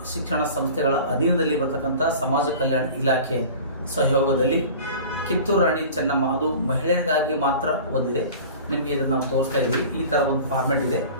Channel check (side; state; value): both; inverted; correlation -0.40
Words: ಶಿಕ್ಷಣ ಸಂಸ್ಥೆಗಳ ಅಧೀನದಲ್ಲಿ ಬರ್ತಕ್ಕಂಥ ಸಮಾಜ ಕಲ್ಯಾಣ ಇಲಾಖೆ ಸಹಯೋಗದಲ್ಲಿ ಕಿತ್ತೂರು ರಾಣಿ ಚೆನ್ನಮ್ಮ, ಅದು ಮಹಿಳೆಯರಿಗಾಗಿ ಮಾತ್ರ ಒಂದಿದೆ. ನಿಮಗೆ ಇದನ್ನು ನಾವು ತೋರಿಸ್ತಾ ಇದ್ದೀವಿ. ಈ ಥರ ಒಂದು ಫಾರ್ಮೆಟ್ ಇದೆ.